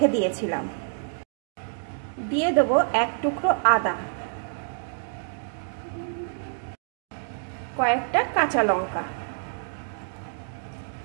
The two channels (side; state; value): left; silent; digital silence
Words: দিয়েছিলাম। দিয়ে দেব 1 টুকরো আদা, কয়েকটা কাঁচা লঙ্কা।